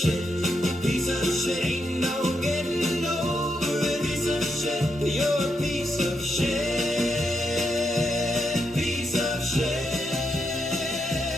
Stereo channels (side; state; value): both; normal; correlation 0.82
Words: Piece of shit. Ain't no getting over it. Piece of shit. You're a piece of shit. Piece of shit.